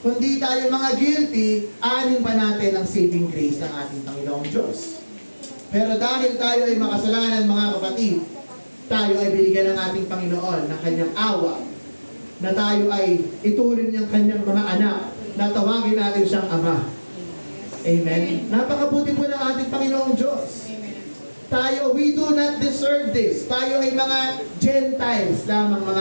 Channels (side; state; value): both; inverted; correlation -1.00